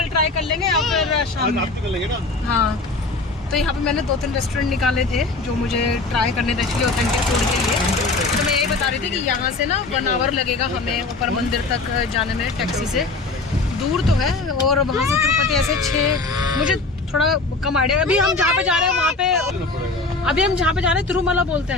ट्राई कर लेंगे या फिर शाम में कर लेंगे ना। हाँ तो यहाँ पे मैंने 2-3 रेस्टोरेंट निकाले थे जो मुझे ट्राई करने थे एक्चुअली ऑथेंटिक फूड के लिए। तो मैं यही बता रही थी कि यहाँ से ना 1 आवर लगेगा हमें ऊपर मंदिर तक जाने में टैक्सी से। दूर तो है, और वहाँ से तिरुपति ऐसे 6, मुझे थोड़ा कम आइडिया। अभी हम जहाँ पे जा रहे हैं वहाँ पे, अभी हम जहाँ पे जा रहे हैं तिरुमला बोलते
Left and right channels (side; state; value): right; quieter; 3.5 dB